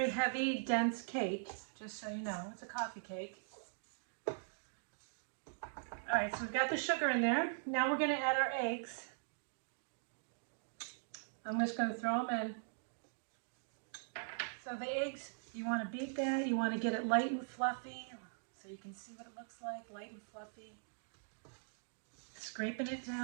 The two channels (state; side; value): silent; left; digital silence